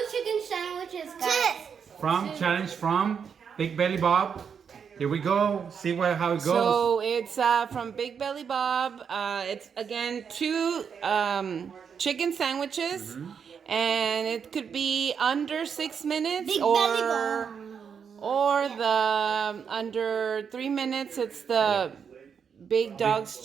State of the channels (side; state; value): left; quieter; 6.9 dB